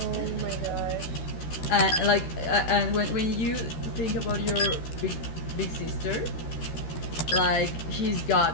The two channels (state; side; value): late; right; 13 ms